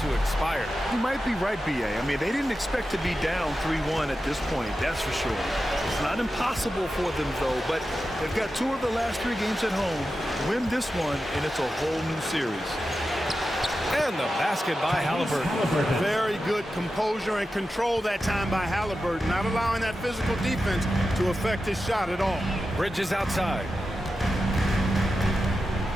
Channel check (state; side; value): normal; both; correlation 0.91